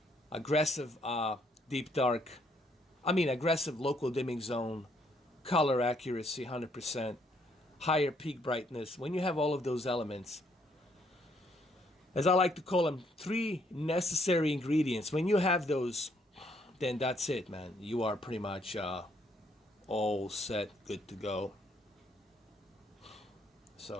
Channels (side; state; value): both; normal; correlation 0.69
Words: aggressive aggressive local dimming zone, color accuracy 100%, higher peak brightness. When you have all of those elements, as I like to call them, three necessary ingredients. When you have those, then that's it, man. You are pretty much all set, good to go.